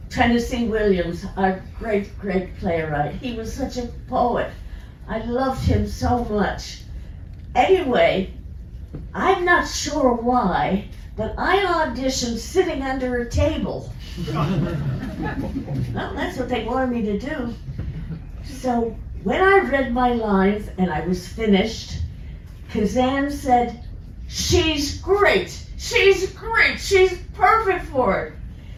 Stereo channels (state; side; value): identical; both; correlation 1.00